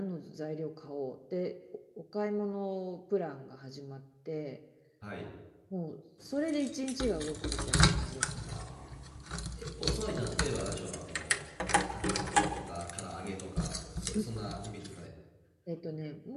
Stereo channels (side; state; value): both; identical; correlation 1.00